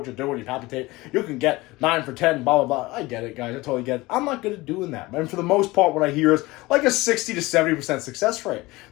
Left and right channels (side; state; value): right; quieter; 20.9 dB